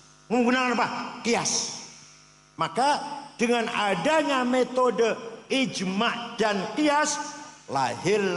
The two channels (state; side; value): identical; both; correlation 1.00